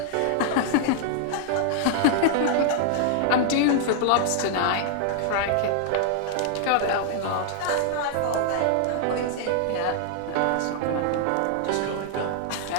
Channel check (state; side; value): different; both; correlation 0.00